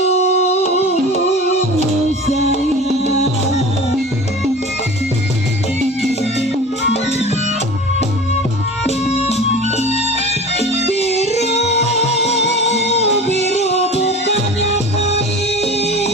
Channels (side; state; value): both; normal; correlation 0.37